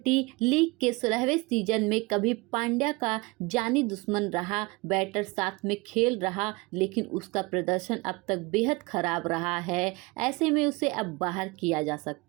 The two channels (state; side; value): quieter; left; 24.9 dB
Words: लीग के 16वें सीजन में कभी पांड्या का जानी दुश्मन रहा बैटर साथ में खेल रहा, लेकिन उसका प्रदर्शन अब तक बेहद खराब रहा है। ऐसे में उसे अब बाहर किया जा